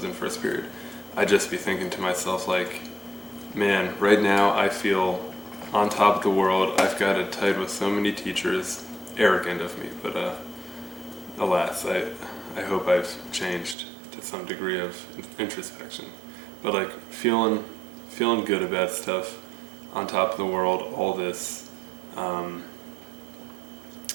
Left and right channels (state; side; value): drops out; left; at 13.8 s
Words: in first period. I'd just be thinking to myself like, man, right now I feel on top of the world. I've got it tied with so many teachers. Arrogant of me, but alas, I hope I've changed to some degree of introspection. But like feeling good about stuff, on top of the world, all this,